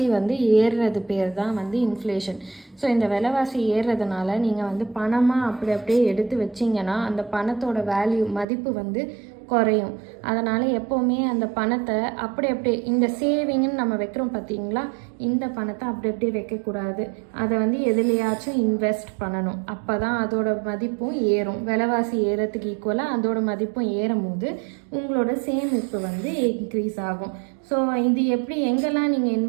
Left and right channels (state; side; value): drops out; left; at 8.5 s